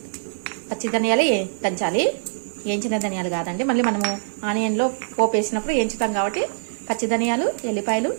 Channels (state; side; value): silent; left; digital silence